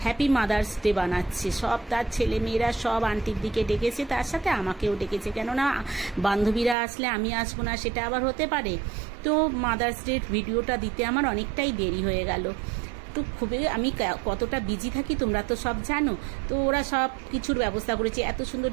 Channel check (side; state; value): left; drops out; at 6.8 s